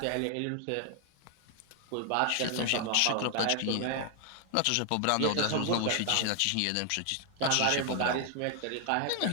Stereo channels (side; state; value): both; different; correlation 0.00